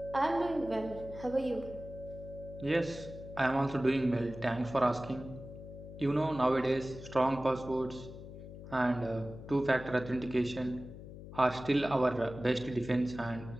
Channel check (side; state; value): left; noise; hum, 13 dB below the sound